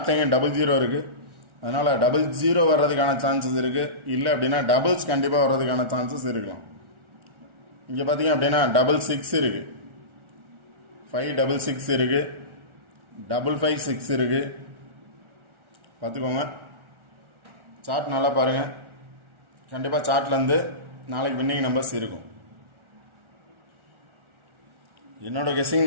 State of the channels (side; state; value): left; late; 1.4 ms